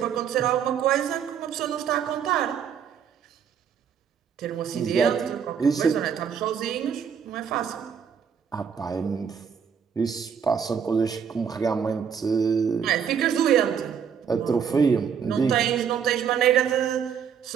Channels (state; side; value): quieter; left; 7.5 dB